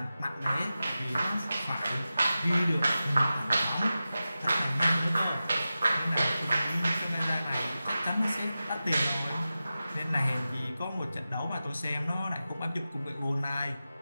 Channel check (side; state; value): both; inverted; correlation -0.94